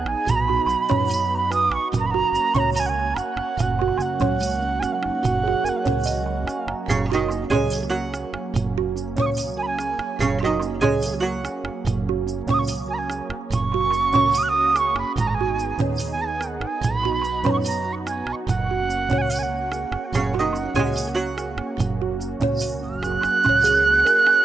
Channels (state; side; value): quieter; left; 3.1 dB